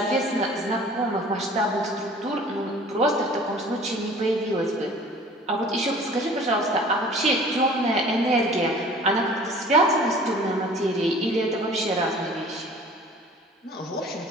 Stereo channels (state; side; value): normal; both; correlation 0.47